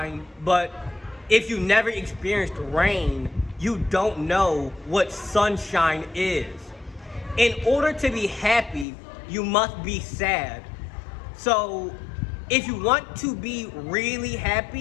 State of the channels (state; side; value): drops out; right; at 8.8 s